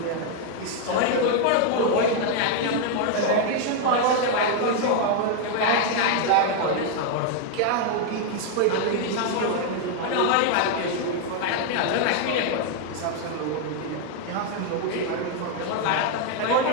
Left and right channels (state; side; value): different; both; correlation 0.00